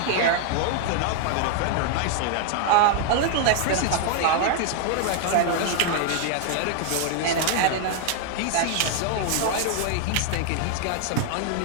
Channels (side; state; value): both; different; correlation 0.00